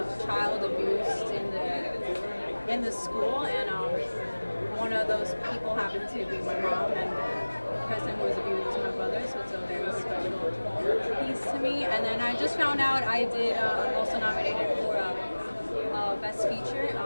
child abused in the school, and one of those people happened to be my mom, and the person who was abused was my brother, so it's a very special piece to me. And then I just found out I did also nominated for Best Feature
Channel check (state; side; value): inverted; both; correlation -1.00